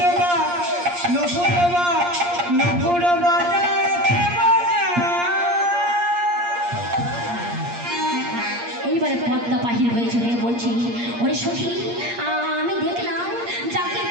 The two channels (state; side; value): late; left; 8.5 ms